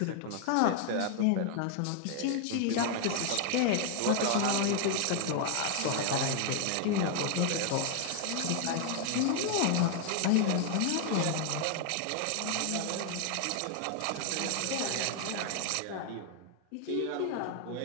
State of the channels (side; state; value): both; different; correlation 0.00